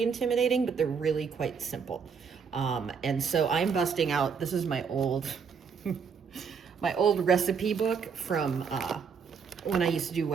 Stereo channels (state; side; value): quieter; left; 6.1 dB